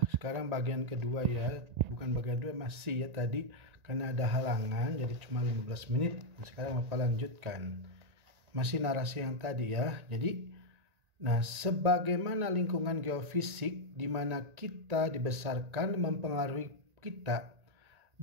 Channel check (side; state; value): left; late; 1.9 ms